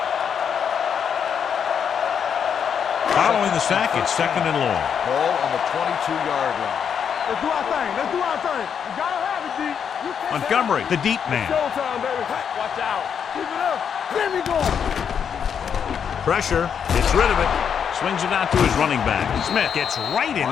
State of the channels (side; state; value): right; quieter; 7.5 dB